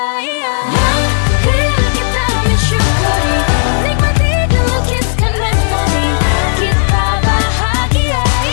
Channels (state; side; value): silent; right; digital silence